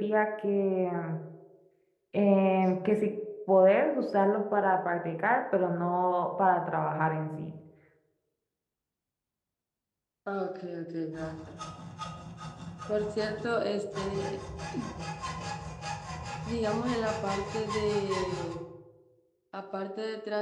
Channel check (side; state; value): both; identical; correlation 1.00